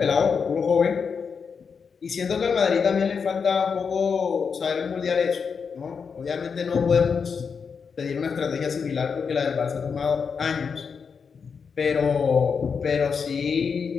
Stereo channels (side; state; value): right; quieter; 5.9 dB